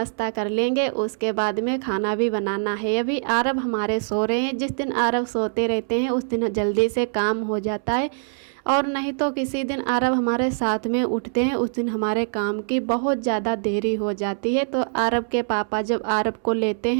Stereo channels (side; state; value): left; silent; 63 dB below the other